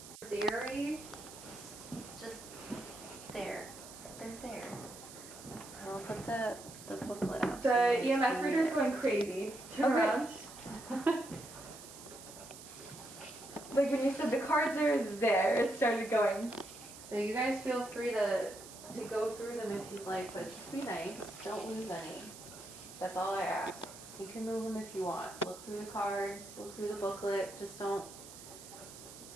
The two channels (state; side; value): noise; right; hiss, 15 dB below the sound